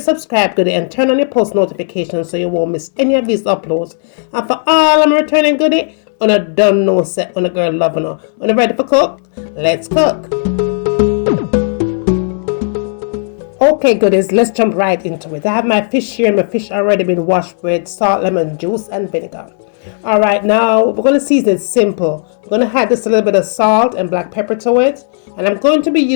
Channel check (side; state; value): right; silent; digital silence